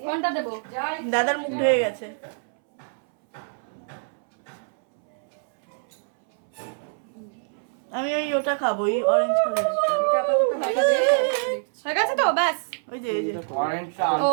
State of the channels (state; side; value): silent; left; 62 dB below the other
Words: কোনটা দেব? দাদার মুখ ধুয়ে গেছে। আমি ওটা খাবো, ওই অরেঞ্জ কালারটা। এটা আপাতত হয়ে গেছে। হয়ে গেছে তো ব্যাস। ওই যে এই যে অরেঞ্জটা ও